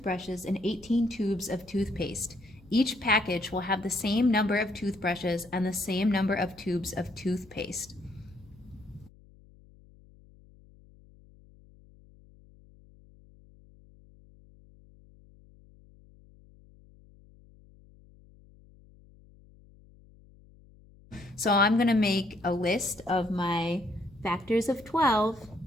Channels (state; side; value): noise; left; hum, 25 dB below the sound